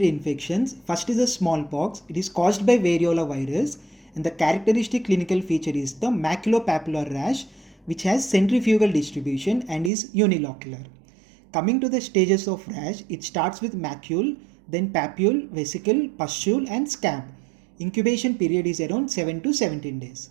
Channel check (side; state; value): left; drops out; at 9.9 s